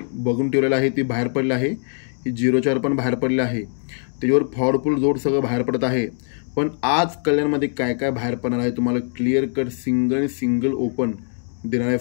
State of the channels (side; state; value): right; silent; 57 dB below the other